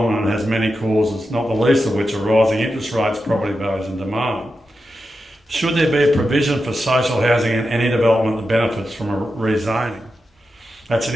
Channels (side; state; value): both; normal; correlation 0.89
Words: and has many causes, not the least of which are rising interest rates, property values and demand. Should there be a provision for social housing in any development that benefits from a rezoning? That's